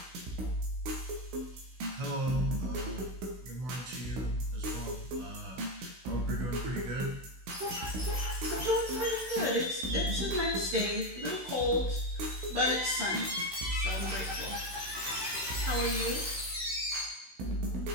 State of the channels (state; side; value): late; left; 16 ms